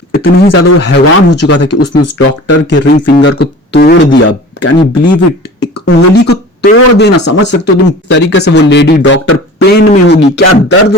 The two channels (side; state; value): both; normal; correlation 0.40